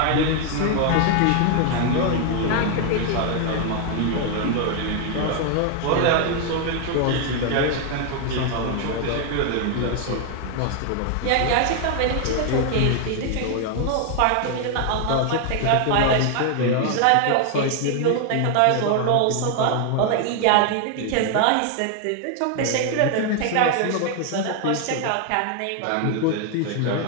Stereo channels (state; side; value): different; both; correlation 0.00